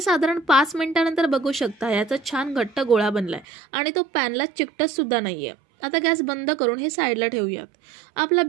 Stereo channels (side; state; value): left; drops out; at 3.5 s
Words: साधारण 5 मिनिटांनंतर बघू शकता याचा छान घट्ट गोळा बनलाय आणि तो पॅनला चिकटत सुद्धा नाहीये. आता गॅस बंद करून हे साईडला ठेवूयात. आपला